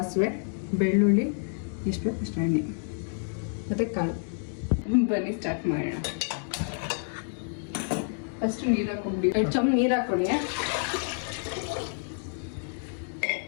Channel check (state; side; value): silent; right; 59 dB below the other